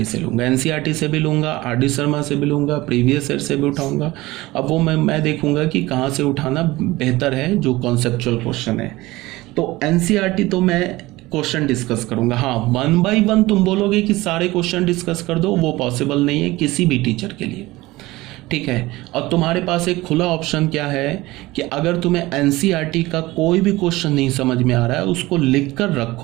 से लूँगा, एनसीईआरटी से भी लूँगा, आरडी शर्मा से भी लूँगा, प्रीवियस ईयर से भी उठाऊँगा। अब वो मैं देखूँगा कि कहाँ से उठाना बेहतर है, जो कॉन्सेप्चुअल क्वेश्चन है। तो एनसीईआरटी तो मैं क्वेश्चन डिस्कस करूँगा। हाँ, 1 by 1 तुम बोलोगे कि सारे क्वेश्चन डिस्कस कर दो, वो पॉसिबल नहीं है किसी भी टीचर के लिए, ठीक है। और तुम्हारे पास एक खुला ऑप्शन क्या है कि अगर तुम्हें एनसीईआरटी का कोई भी क्वेश्चन नहीं समझ में आ रहा है उसको लिख कर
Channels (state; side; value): quieter; left; 19.4 dB